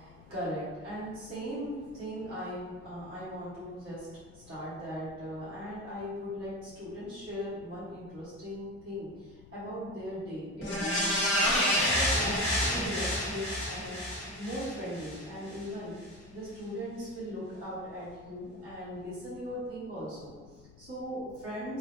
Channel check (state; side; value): noise; left; rumble, 21 dB below the sound